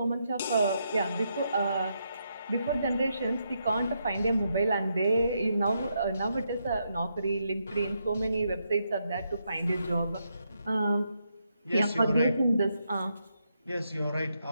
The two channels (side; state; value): both; inverted; correlation -0.80